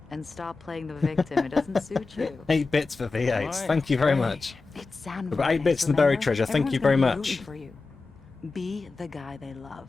And stop playing the victim. It doesn't suit you. 8 bits for V8s. Thank you very much. It's San We've got 8 bits in the buried treasure. Thank you very much. For you. Be the guy they love.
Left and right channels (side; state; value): right; quieter; 4.0 dB